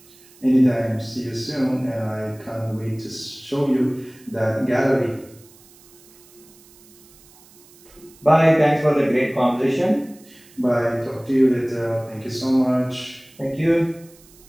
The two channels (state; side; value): noise; right; hiss, 26 dB below the sound